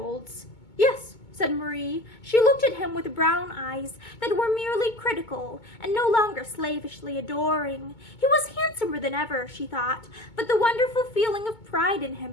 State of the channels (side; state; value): right; late; 2.2 ms